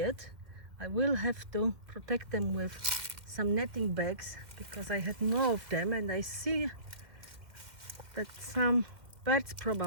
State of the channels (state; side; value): late; left; 2.2 ms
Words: I will have to protect them with some netting bags because I had more of them, and I see that some birds